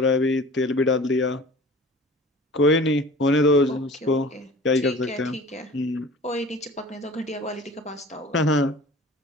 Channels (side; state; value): both; normal; correlation 0.42